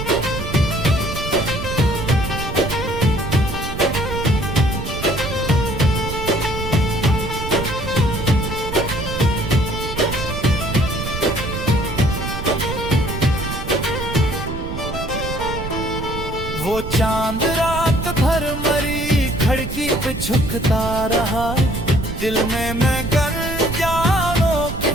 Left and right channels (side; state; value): right; noise; rumble, 7 dB below the sound